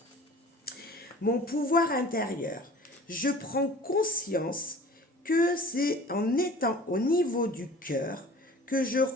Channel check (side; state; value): both; normal; correlation 0.44